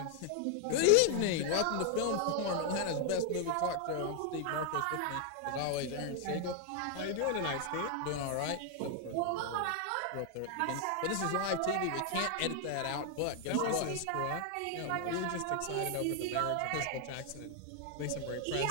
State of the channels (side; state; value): both; different; correlation 0.00